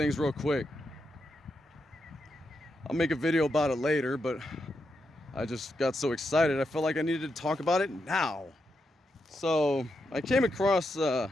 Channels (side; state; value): both; normal; correlation 0.84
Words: real quick. I'll make a video about it later, but I just got so excited I felt like I needed to talk about it now. So I came across there's